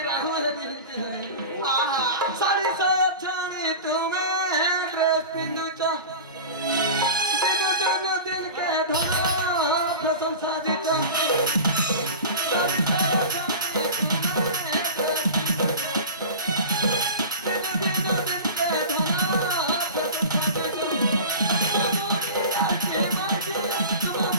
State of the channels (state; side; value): inverted; both; correlation -0.32